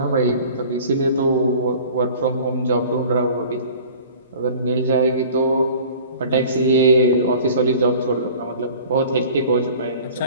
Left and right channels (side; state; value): both; inverted; correlation -0.45